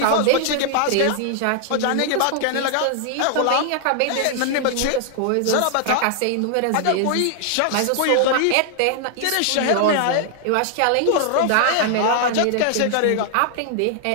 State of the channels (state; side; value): different; both; correlation 0.00